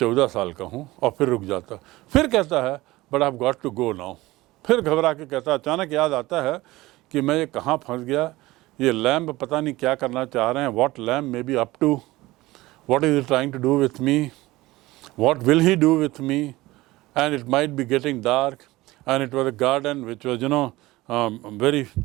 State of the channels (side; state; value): left; quieter; 19.0 dB